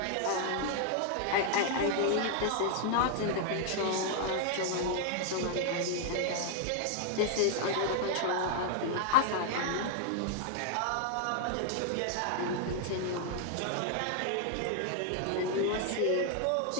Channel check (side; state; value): both; different; correlation 0.00